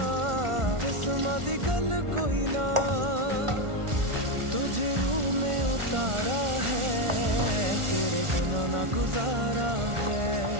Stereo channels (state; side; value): late; left; 1.4 ms